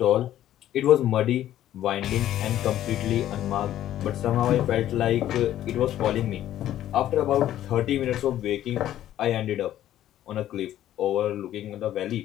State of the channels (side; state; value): right; quieter; 12.4 dB